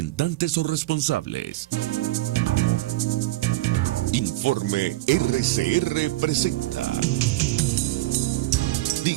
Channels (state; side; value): quieter; left; 18.6 dB